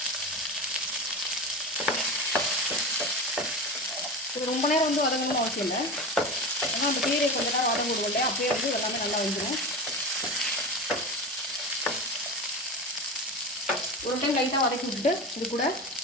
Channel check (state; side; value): normal; both; correlation 0.26